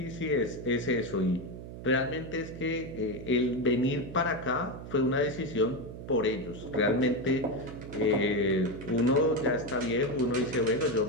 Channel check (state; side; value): noise; right; hum, 11 dB below the sound